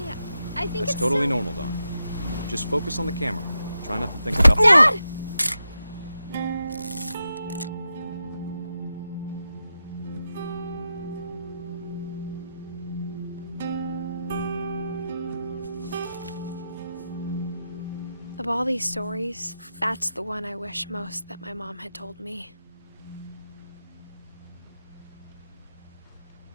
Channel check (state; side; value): inverted; both; correlation -0.88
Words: I think That's it's totally normal, Dawn. Just focus on the camera. Try not to think about— Dad! Of all these stories, that's the one I wish most that my mom had told me.